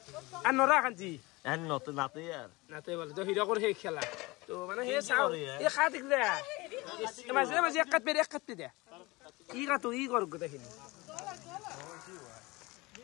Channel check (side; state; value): right; quieter; 23.0 dB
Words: আৰু নৰা শান্তি এন নত নাতে यार নাতে বলে তো হিৰকৰ সেই খেলা তো মানে সেই চাও এই খা দেখিলে মাজে মাজে এক কাট দে ই কাটো ই কৰ গোটেইখিনি